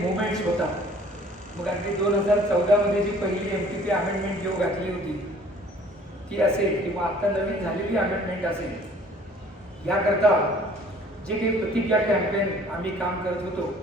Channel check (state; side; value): normal; both; correlation 0.54